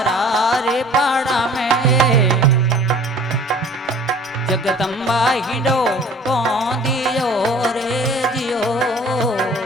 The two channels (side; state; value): both; normal; correlation 0.49